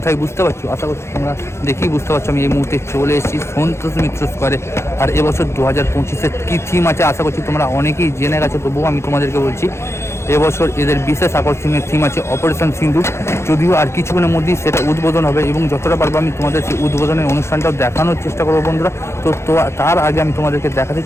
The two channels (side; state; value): right; late; 0.13 ms